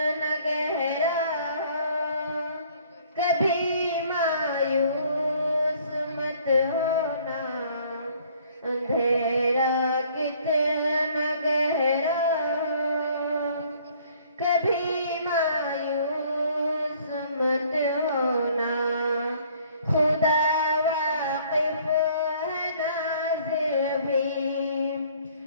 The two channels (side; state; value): both; inverted; correlation -0.58